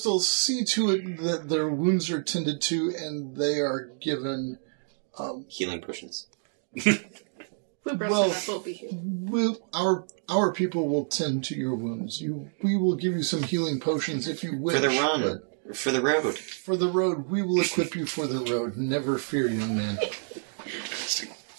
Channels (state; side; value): silent; left; 59 dB below the other